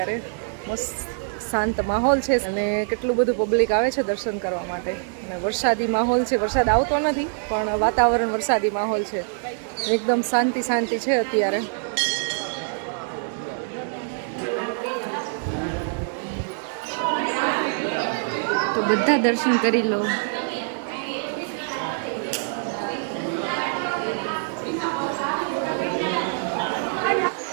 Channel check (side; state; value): left; silent; 62 dB below the other